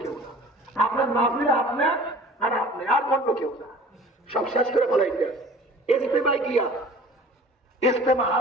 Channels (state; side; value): normal; both; correlation 0.46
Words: কেউ না। আপনার মাহফিলে আপনার আর আপনি, আর অন্য কেউ না। সব শেষ করে ফেলাইতে ইজতেমায় গিয়া, ইজতেমা